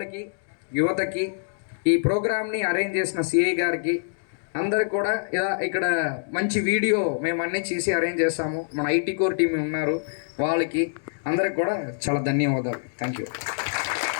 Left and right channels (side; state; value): right; silent; digital silence